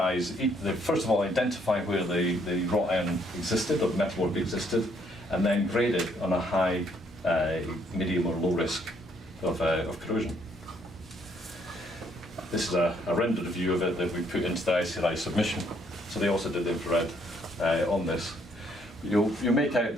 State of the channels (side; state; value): both; normal; correlation 0.68